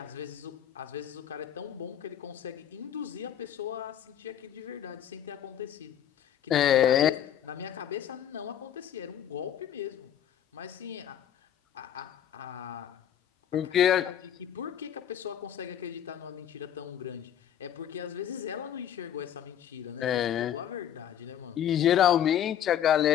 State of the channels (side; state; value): right; quieter; 10.2 dB